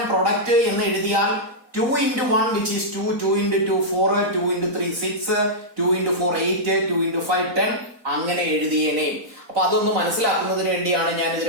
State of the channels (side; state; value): left; late; 4.0 ms